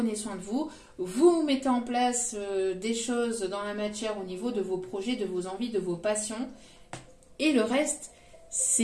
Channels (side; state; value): both; identical; correlation 1.00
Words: soin de vous, vous mettez en place des choses dans la matière au niveau de vos projets, de vos envies, de vos passions. Et le reste,